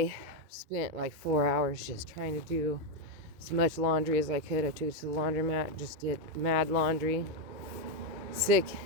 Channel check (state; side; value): late; left; 2.2 ms